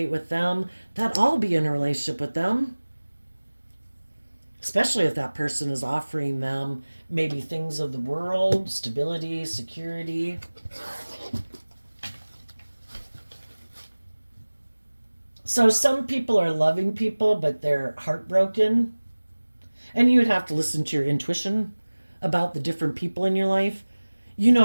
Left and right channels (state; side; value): inverted; both; correlation -1.00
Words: with them, that I'll be in a relationship with them. Especially if that person is offering them maybe things of the world, stability, security. So some people are loving people, but they're heartbroken. And you would have to listen to your intuition about the different people in your life. You